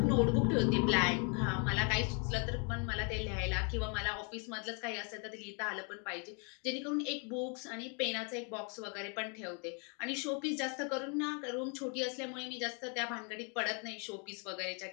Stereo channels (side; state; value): right; quieter; 36.9 dB